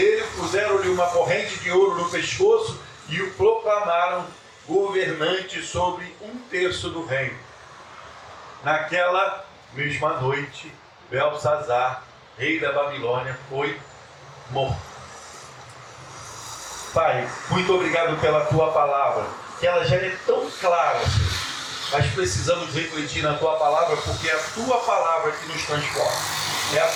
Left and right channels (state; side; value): identical; both; correlation 1.00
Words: puseram-lhe uma corrente de ouro no pescoço e o proclamaram governante sobre 1/3 do reino. Naquela mesma noite, Belsazar, rei da Babilônia, foi morto. Pai, muito obrigado pela tua palavra, que ela já é tão clara, Senhor. Mas precisamos refletir na tua palavra, porque é a tua palavra que nos transforma. É a